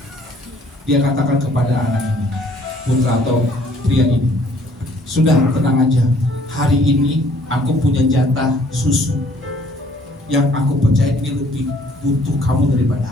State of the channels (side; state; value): both; normal; correlation 0.59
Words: dia katakan kepada anak ini, putra atau pria ini, sudah tenang aja, hari ini aku punya jatah susu yang aku percaya ini lebih butuh kamu